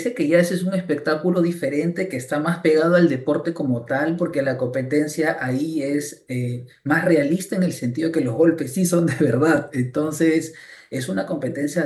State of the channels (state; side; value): identical; both; correlation 1.00